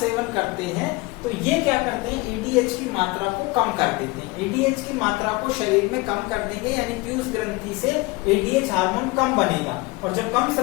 करते हैं तो ये क्या करते हैं? ADH की मात्रा को कम कर देते हैं। ADH की मात्रा को शरीर में कम कर देंगे, यानी पीयूष ग्रंथि से ADH हार्मोन कम बनेगा, और जब कम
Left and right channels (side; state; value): right; quieter; 23.4 dB